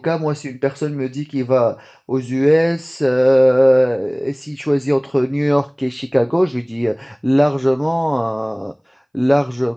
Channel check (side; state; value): both; identical; correlation 1.00